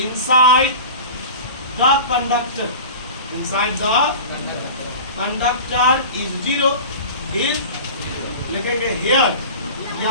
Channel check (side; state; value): both; inverted; correlation -0.35